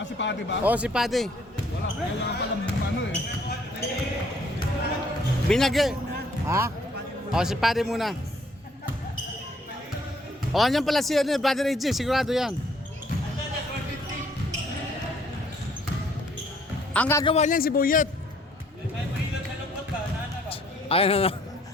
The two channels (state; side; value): normal; both; correlation 0.63